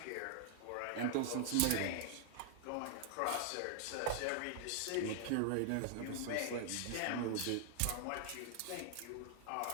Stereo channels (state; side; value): different; both; correlation 0.00